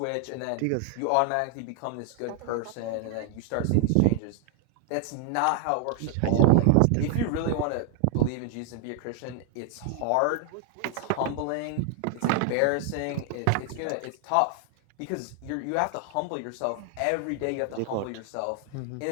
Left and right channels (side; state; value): both; different; correlation 0.00